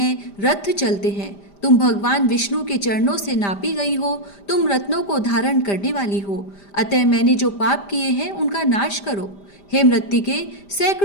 रथ चलते हैं। तुम भगवान विष्णु के चरणों से नापी गई हो, तुम रत्नों को धारण करने वाली हो, अतः मैंने जो पाप किए हैं उनका नाश करो। हे मृत्तिके,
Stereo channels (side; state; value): right; late; 5.0 ms